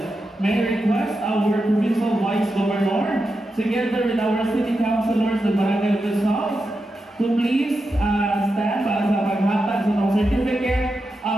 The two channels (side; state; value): both; normal; correlation 0.88